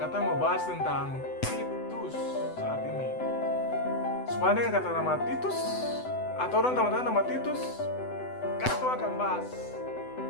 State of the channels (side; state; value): right; late; 8.0 ms